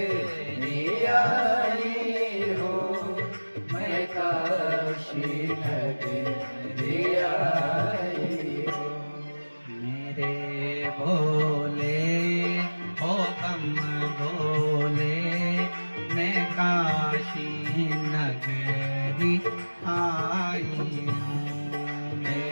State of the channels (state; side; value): inverted; both; correlation -1.00